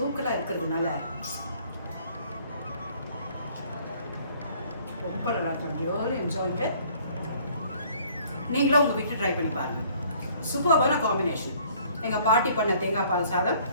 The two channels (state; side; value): inverted; both; correlation -0.58